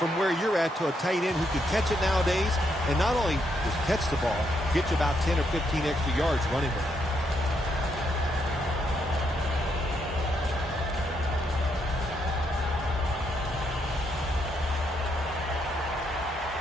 where you're at to a tight end who can catch it nowadays. And not only just catch the ball, get you about 10 or 15 extra yards running with it.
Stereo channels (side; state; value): both; normal; correlation 0.77